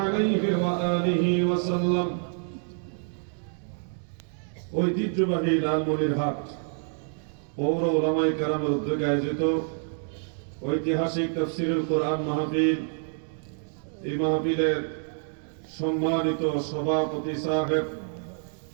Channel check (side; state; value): left; silent; 60 dB below the other